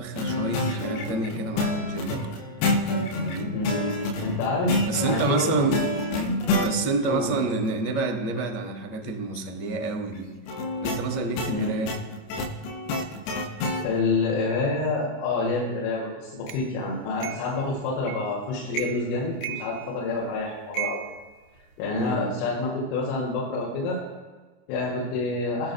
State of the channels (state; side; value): late; right; 28 ms